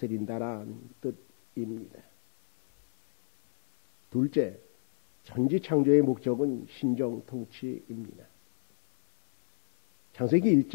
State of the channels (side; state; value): right; silent; digital silence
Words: 뜻입니다. 둘째, 천지창조의 목적은 신정통치입니다. 창세기